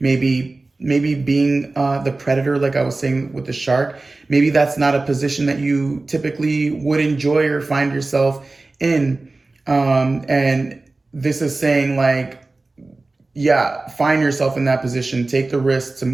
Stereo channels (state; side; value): quieter; left; 3.3 dB